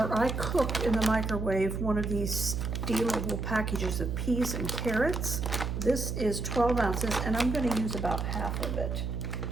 I cooked in the microwave one of these steamable packages of peas and carrots. This is 12 ounces, and I'm going to use about 1/2 of it.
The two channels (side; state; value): right; noise; hum, 2 dB below the sound